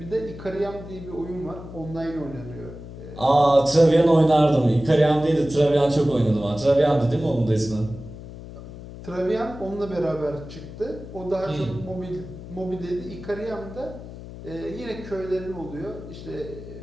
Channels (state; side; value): noise; left; hum, 13 dB below the sound